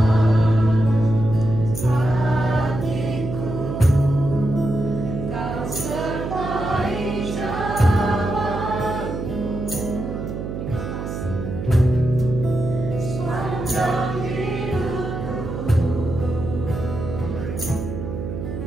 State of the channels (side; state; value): right; noise; hum, 6 dB below the sound